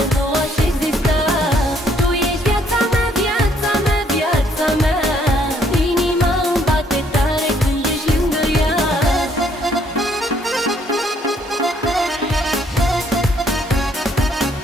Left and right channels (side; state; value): both; normal; correlation 0.67